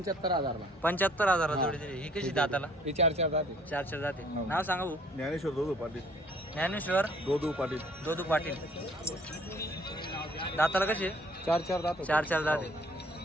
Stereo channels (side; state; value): both; normal; correlation 0.58